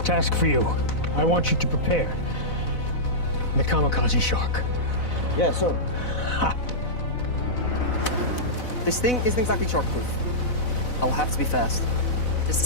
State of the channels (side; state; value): right; late; 4.0 ms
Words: for you. I want you to prepare the kamikaze shark. Yeah, sir. This thing isn't exactly shark-proof. I'll have to be fast. This